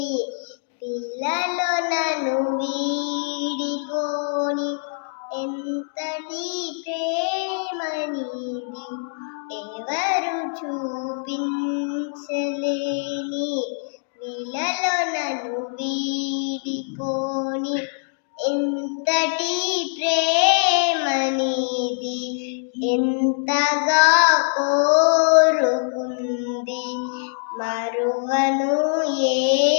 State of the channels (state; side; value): silent; right; digital silence